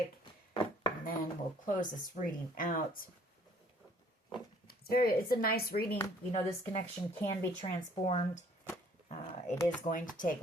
And then we'll close this reading out. It's a nice reading. You know, this connection can be transformed. It is going to take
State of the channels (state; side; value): normal; both; correlation 0.58